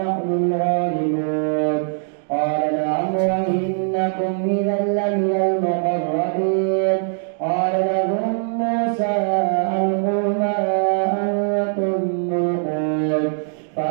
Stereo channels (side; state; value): left; silent; digital silence